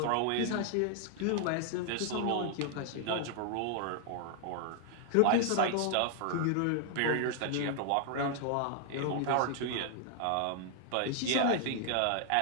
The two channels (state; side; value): different; both; correlation 0.00